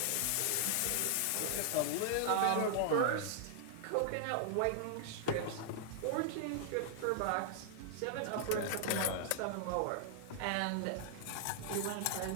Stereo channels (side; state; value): both; different; correlation 0.00